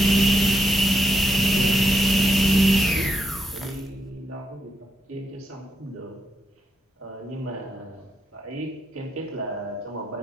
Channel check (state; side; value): normal; both; correlation 0.82